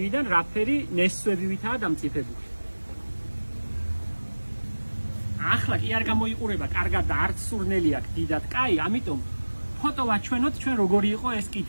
რაფერი ნესვებივითაა დამწიფებული. ახლა კი არ გამოიყურება კარგად და არც სურნელი აქვს დიდად კაი, ამიტომ ფოტო ვაჩვენოთ ჩვენ როგორი იყო ეს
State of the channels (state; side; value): inverted; both; correlation -1.00